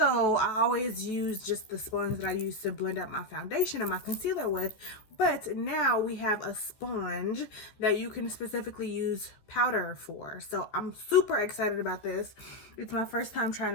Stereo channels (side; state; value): right; late; 14 ms